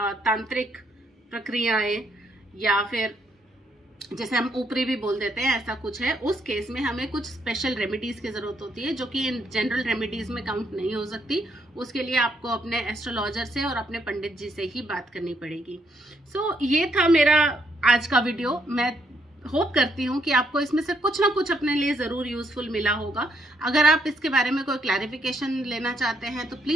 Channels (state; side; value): normal; both; correlation 0.74